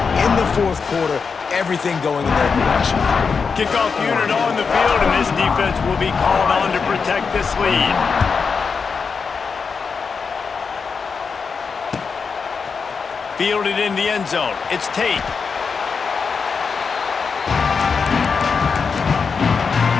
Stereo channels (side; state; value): right; quieter; 5.4 dB